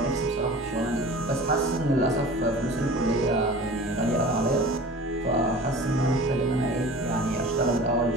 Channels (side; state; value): both; normal; correlation 0.40